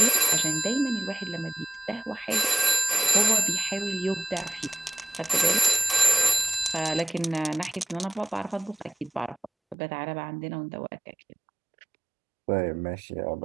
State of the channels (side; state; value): left; drops out; at 9.8 s